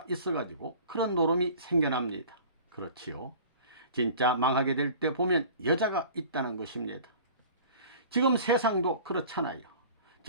있어가지고 그런 노름이 생겨납니다. 그렇지요. 진짜 망하게 될 때 보면 여자가 있다는 것입니다. 지금 세상도 그렇잖아요.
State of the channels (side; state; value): both; inverted; correlation -0.44